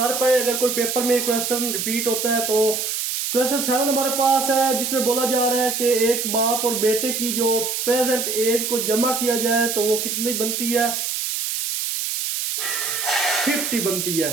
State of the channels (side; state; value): right; noise; hiss, 2 dB below the sound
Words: पाए। अगर कोई पेपर में क्वेश्चन रिपीट होता है तो क्वेश्चन 7 हमारे पास है जिसमें बोला जा रहा है कि एक बाप और बेटे की जो प्रेजेंट एज को जमा किया जाए तो वो कितनी बनती है, 50 बनती